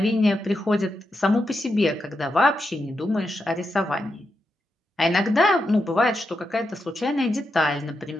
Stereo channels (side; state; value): both; normal; correlation 0.86